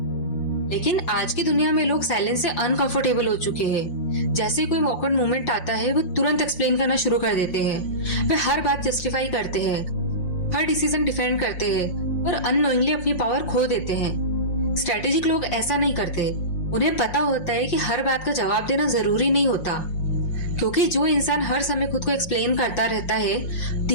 लेकिन आज की दुनिया में लोग साइलेंस से अनकंफर्टेबल हो चुके हैं। जैसे कोई ऑकवर्ड मोमेंट आता है, वो तुरंत एक्सप्लेन करना शुरू कर देते हैं। वे हर बात जस्टिफाई करते हैं, हर डिसीजन डिफेंड करते हैं और अननोइंगली अपनी पावर खो देते हैं। स्ट्रेटेजिक लोग ऐसा नहीं करते। उन्हें पता होता है कि हर बात का जवाब देना जरूरी नहीं होता, क्योंकि जो इंसान हर समय खुद को एक्सप्लेन करता रहता है,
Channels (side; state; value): right; late; 5.5 ms